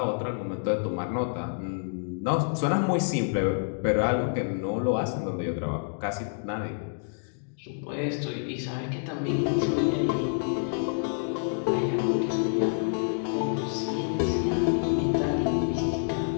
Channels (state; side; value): silent; right; digital silence